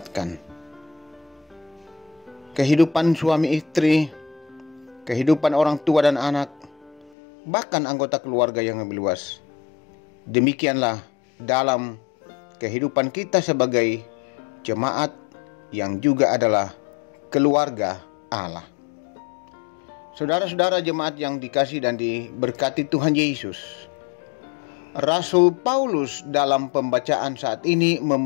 Kehidupan suami istri, kehidupan orang tua dan anak, bahkan anggota keluarga yang lebih luas. Demikianlah dalam kehidupan kita sebagai jemaat yang juga adalah keluarga Allah. Saudara-saudara jemaat yang dikasihi dan diberkati Tuhan Yesus, Rasul Paulus dalam pembacaan saat ini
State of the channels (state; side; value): drops out; right; at 7.1 s